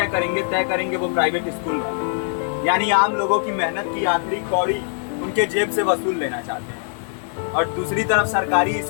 करेंगे वो प्राइवेट स्कूल वाले। यानी आम लोगों की मेहनत की आखिरी कौड़ी उनके जेब से वसूल लेना चाहते हैं। और दूसरी तरफ सरकारी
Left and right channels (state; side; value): silent; right; 61 dB below the other